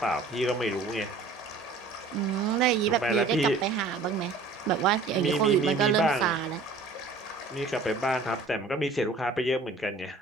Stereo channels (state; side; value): quieter; left; 3.9 dB